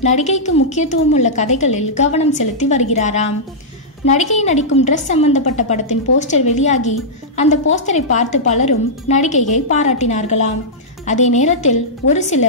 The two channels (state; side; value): normal; both; correlation -0.11